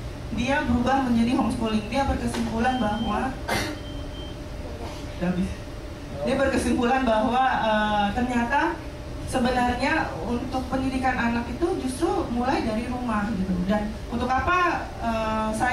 dia berubah menjadi homeschooling. Dia berkesimpulan bahwa ternyata sebenarnya untuk pendidikan anak itu justru mulai dari rumah gitu. Dan untuk apa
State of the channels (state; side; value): identical; both; correlation 1.00